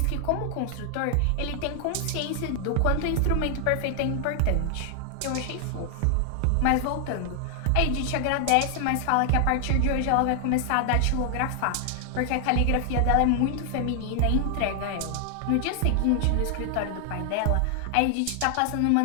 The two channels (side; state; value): both; different; correlation 0.00